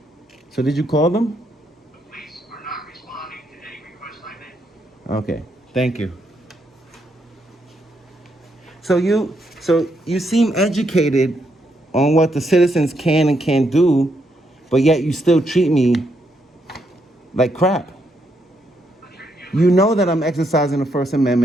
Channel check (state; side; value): normal; both; correlation 0.77